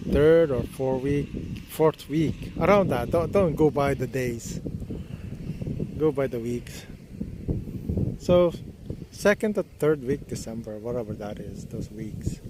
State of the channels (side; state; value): both; identical; correlation 1.00